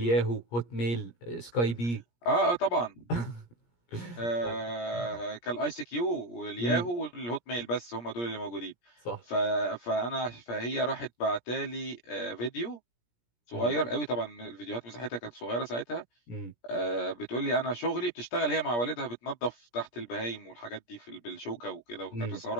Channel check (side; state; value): right; late; 17 ms